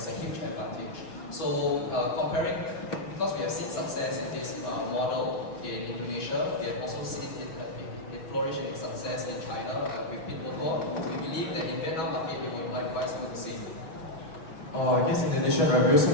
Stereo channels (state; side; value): late; right; 6.3 ms